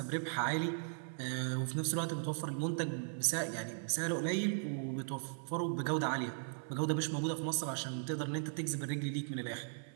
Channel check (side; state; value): left; silent; 53 dB below the other